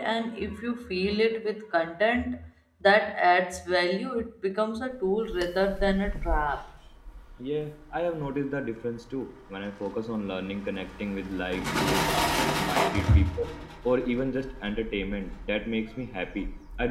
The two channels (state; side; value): identical; both; correlation 1.00